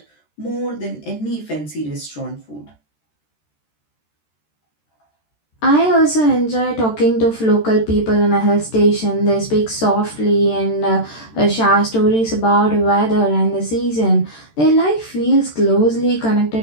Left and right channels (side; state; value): right; late; 13 ms